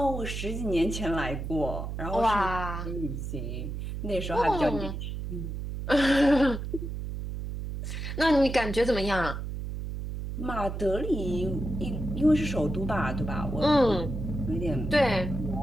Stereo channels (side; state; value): right; noise; hum, 5 dB below the sound